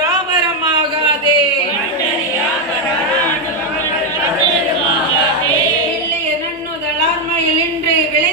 இல்லைய நன்னுதலார்மையில் இன்று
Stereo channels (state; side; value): normal; both; correlation 0.04